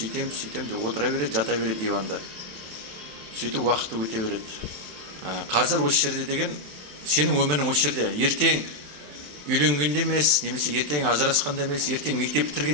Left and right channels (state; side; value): late; left; 27 ms